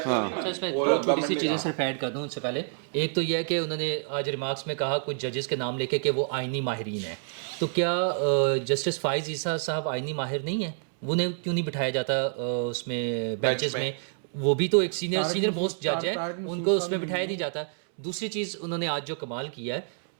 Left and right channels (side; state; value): left; silent; 59 dB below the other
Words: اس میں تھوڑی سی چیزیں صرف ایڈ کر دوں ان سے پہلے. ایک تو یہ ہے کہ انہوں نے آج ریمارکس میں کہا کچھ ججز کے نام لے کے کہ وہ آئینی ماہرین ہیں. تو کیا جسٹس فائز عیسیٰ صاحب آئینی ماہر نہیں ہیں؟ وہ کیوں نہیں بٹھایا جاتا اس میں بینچز میں؟ وہ بھی تو ایک سینئر موسٹ جج ہے, ان کو اس میں بٹھایا نہیں جاتا. دوسری چیز انہوں نے آج جو کمال کیا ہے,